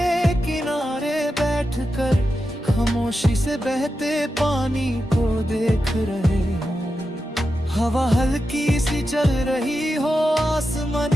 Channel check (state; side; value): normal; both; correlation 0.89